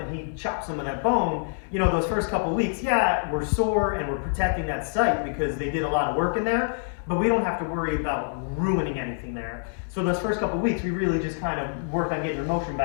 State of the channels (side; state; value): right; silent; digital silence